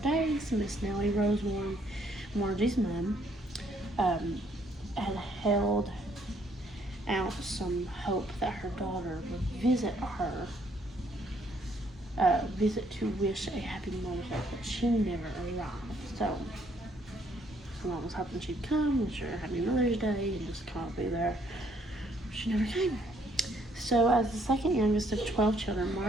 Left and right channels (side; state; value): both; normal; correlation 0.67